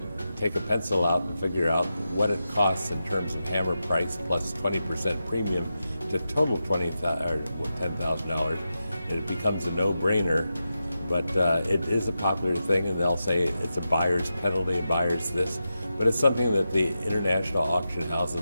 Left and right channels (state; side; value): inverted; both; correlation -0.90